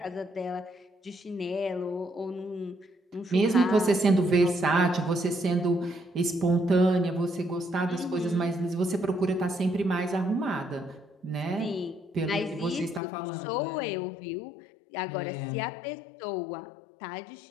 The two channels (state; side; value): drops out; right; at 13.0 s